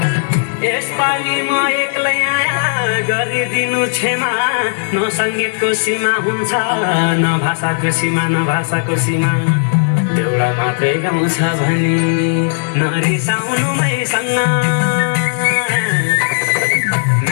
यसपालि म एक्लै आया गरिदिनु क्षमा न सङ्गीतको सीमा हुन्छ न भाषाको सीमा न भाषाको सीमा देउडा मात्रै गाउँछ भने नरिसाउनु मैसँग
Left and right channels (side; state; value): right; silent; digital silence